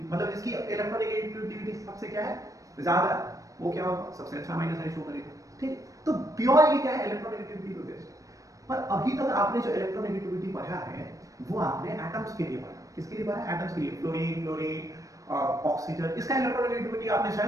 मतलब जिसकी इलेक्ट्रोनेगेटिविटी सबसे क्या है, ज्यादा, वो क्या होगा, सबसे अच्छा माइनस आई शो करेगा, ठीक। तो प्योर ये क्या है, इलेक्ट्रोनेगेटिविटी पे बेस्ड है। पर अभी तक आपने जो इलेक्ट्रोनेगेटिविटी पढ़ा है वो आपने एटम्स के लिए पढ़ा, किसके लिए पढ़ा, एटम्स के लिए, फ्लोरीन ऑक्सीजन, इसका इलेक्ट्रोनेगेटिविटी आपने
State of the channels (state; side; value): late; left; 0.16 ms